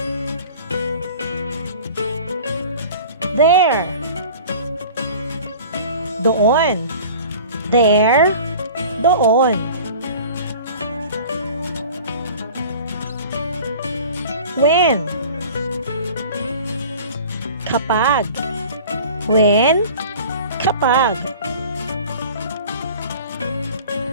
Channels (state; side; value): inverted; both; correlation -0.42